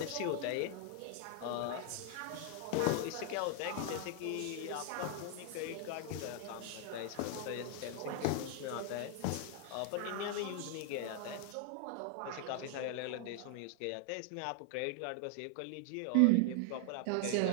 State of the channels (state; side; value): different; both; correlation 0.00